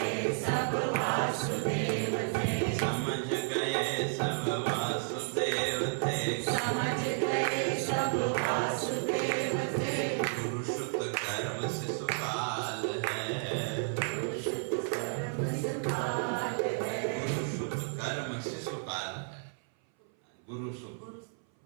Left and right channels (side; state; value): left; silent; 56 dB below the other